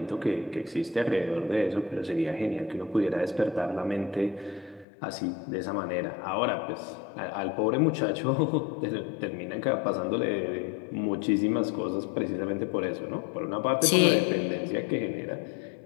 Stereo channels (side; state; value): right; drops out; at 4.9 s